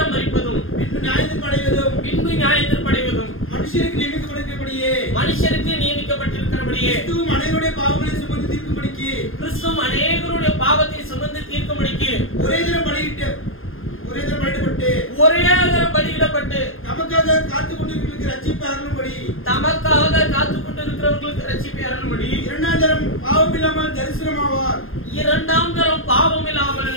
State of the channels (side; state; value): right; late; 0.60 ms